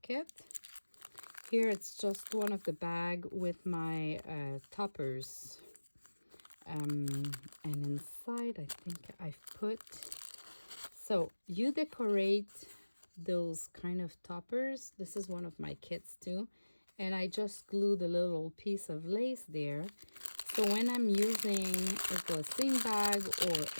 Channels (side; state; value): both; inverted; correlation -1.00